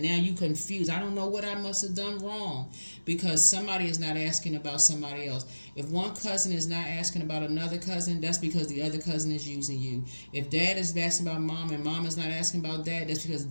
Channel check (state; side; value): inverted; both; correlation -1.00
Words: you confused. I don't know what I must have done wrong because somebody is not asking about somebody else. If one cousin is not asking about another cousin, that's because the other cousin is using you. If dad is asking about mom and mom is not asking about dad, that's because